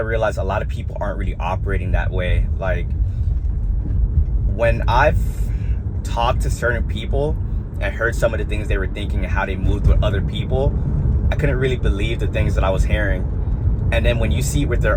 realize a lot of people aren't really operating that way. Like, when I've talked to certain people and heard some of the things they were thinking and how they moved with other people, I couldn't really believe the things that I was hearing. And then when you see it with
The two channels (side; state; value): both; identical; correlation 1.00